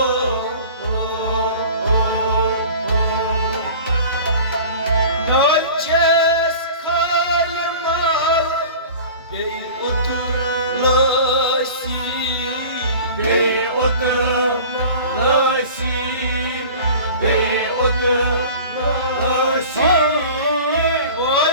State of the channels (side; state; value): both; inverted; correlation -0.40